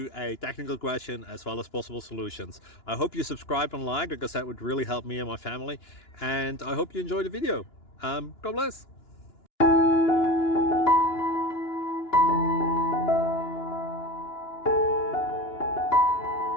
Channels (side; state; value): right; late; 2.9 ms